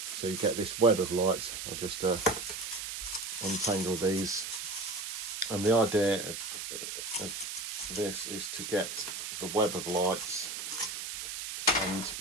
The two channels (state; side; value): noise; right; hiss, 6 dB below the sound